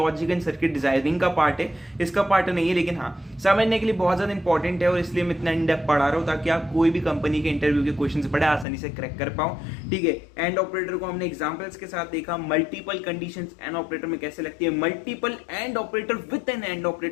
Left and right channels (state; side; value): drops out; right; at 8.7 s